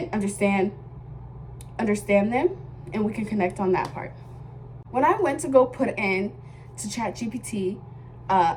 understand them, and we can connect on that part. When I went to go put in to ChatGPT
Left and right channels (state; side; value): identical; both; correlation 1.00